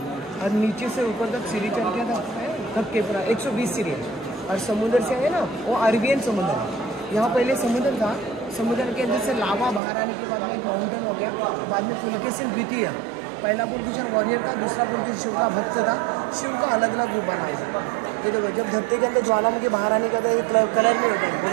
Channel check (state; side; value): drops out; left; at 9.8 s